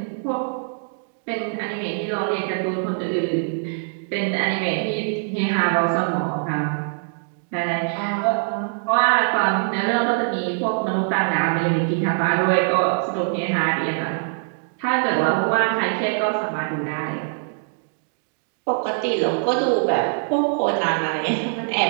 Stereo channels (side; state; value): left; silent; digital silence